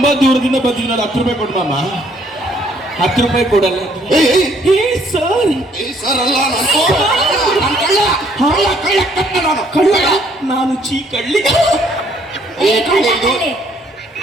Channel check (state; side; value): normal; both; correlation 0.65